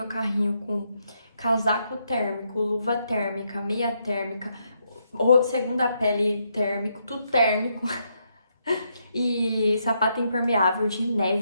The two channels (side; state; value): both; inverted; correlation -0.78